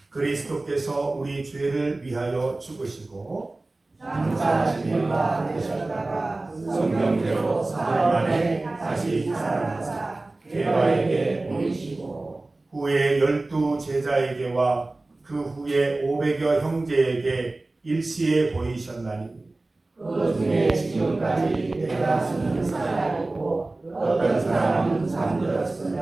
그리스도께서 우리 죄를 위하여 죽으시고 장사하신 바 되셨다가 성경대로 사흘 만에 다시 살아나사 게바에게 보이시고 후에 12 제자에게와 그 후에 500여 형제에게 일시에 보이셨나니 그 중에 지금까지 대다수는 살아있고 어떤 사람은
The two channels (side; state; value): left; quieter; 3.0 dB